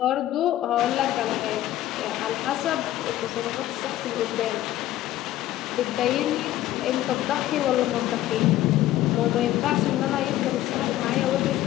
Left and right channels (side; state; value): right; quieter; 14.0 dB